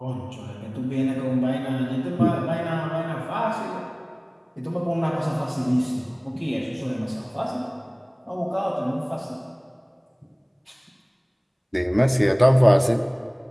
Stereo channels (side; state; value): both; identical; correlation 1.00